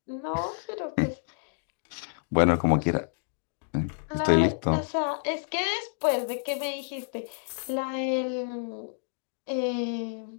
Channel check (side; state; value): right; silent; digital silence